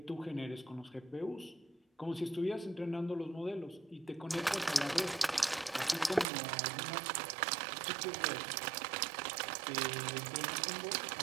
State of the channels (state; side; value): drops out; left; at 6.2 s